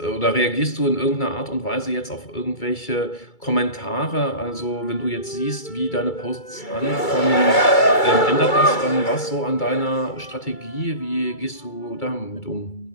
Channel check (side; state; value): right; late; 2.3 ms